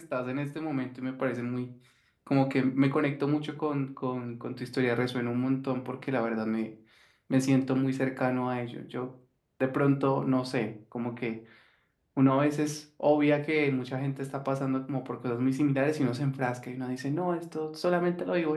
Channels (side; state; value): both; identical; correlation 1.00